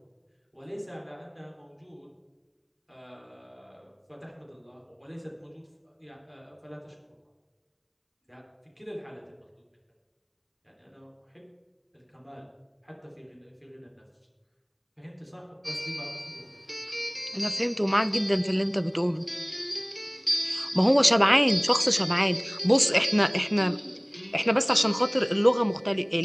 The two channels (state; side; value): identical; both; correlation 1.00